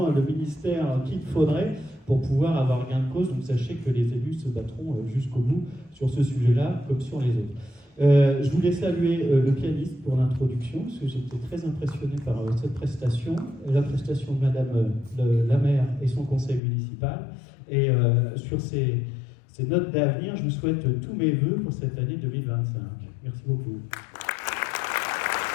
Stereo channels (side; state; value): right; drops out; at 16.6 s